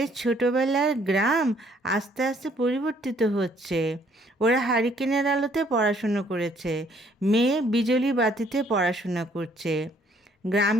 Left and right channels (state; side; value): normal; both; correlation 0.64